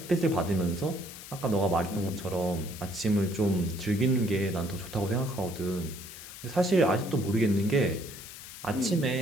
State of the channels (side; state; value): left; noise; hiss, 13 dB below the sound